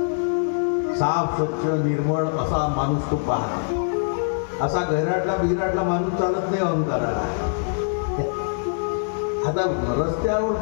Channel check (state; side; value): silent; right; 63 dB below the other